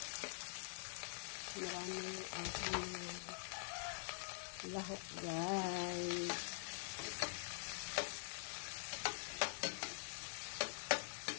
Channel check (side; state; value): right; silent; digital silence